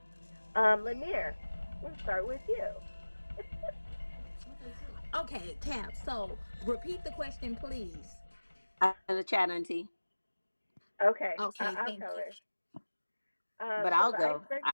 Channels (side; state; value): both; inverted; correlation -1.00